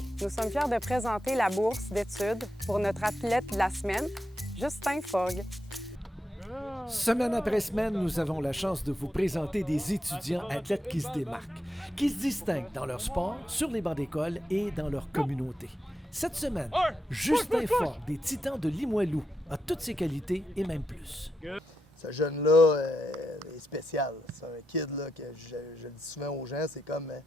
nous sommes fiers de présenter la bourse d'études pour notre athlète de la semaine, Justin Forgue. Semaine après semaine, nous avons la chance de vous présenter des étudiants athlètes qui se démarquent, qui se distinguent dans leur sport, sur les bancs d'école et dans leur communauté. Cette semaine, Justin Forgue, des Titans de Limoilou, a toutes ses qualités et même plus. Ce jeune-là est spécial. C'est un kid là, que je le dis souvent aux gens, c'est comme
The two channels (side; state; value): both; normal; correlation 0.85